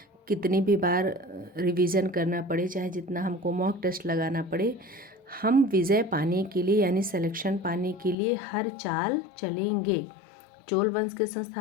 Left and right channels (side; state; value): right; drops out; at 8.2 s